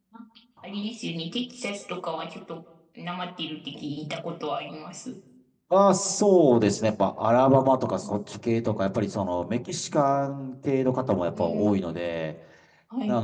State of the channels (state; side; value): identical; both; correlation 1.00